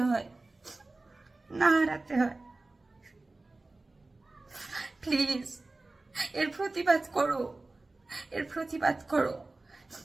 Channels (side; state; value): left; quieter; 3.2 dB